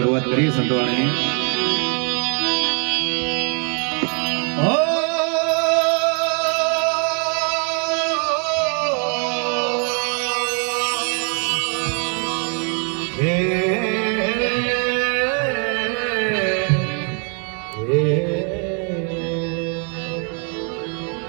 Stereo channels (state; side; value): quieter; left; 38.9 dB